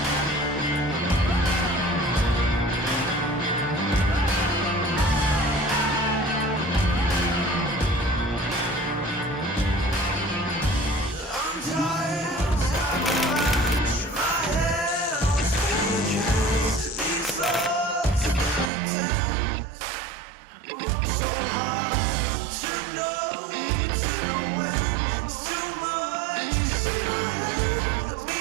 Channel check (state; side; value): drops out; left; at 18.7 s